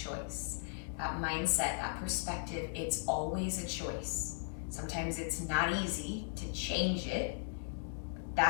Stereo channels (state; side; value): silent; right; digital silence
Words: That mindset, that perspective, it's always a choice. Sometimes it's not easy to change it.